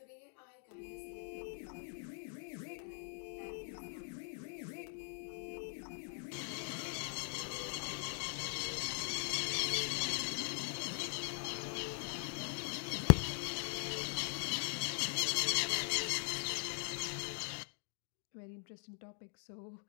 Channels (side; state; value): right; silent; 50 dB below the other